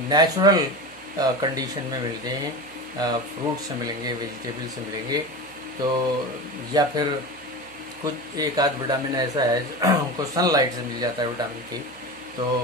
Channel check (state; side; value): noise; right; hum, 29 dB below the sound